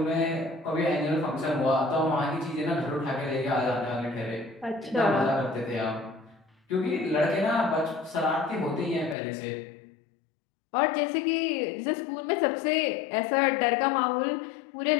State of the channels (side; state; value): right; drops out; at 9.2 s